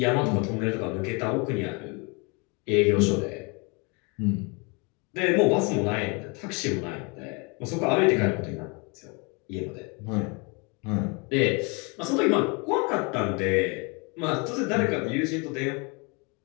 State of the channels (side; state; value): right; quieter; 31.1 dB